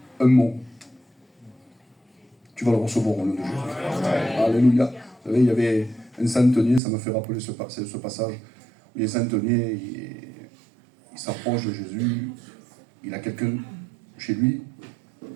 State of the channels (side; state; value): left; drops out; at 6.8 s